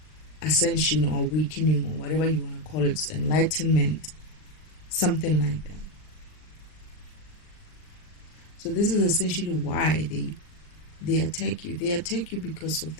ascension or awakening or whatever you want to call it, enlightenment, something like that. So this is essentially why they attack you. They attack you because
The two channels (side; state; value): right; late; 39 ms